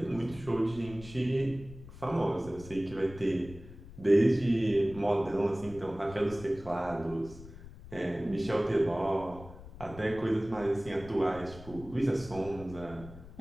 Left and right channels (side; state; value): left; noise; rumble, 16 dB below the sound